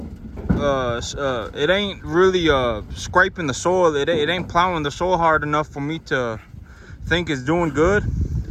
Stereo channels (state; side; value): identical; both; correlation 1.00